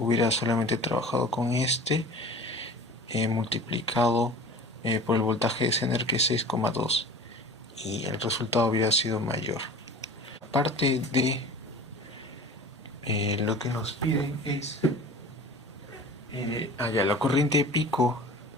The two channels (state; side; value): normal; both; correlation 0.40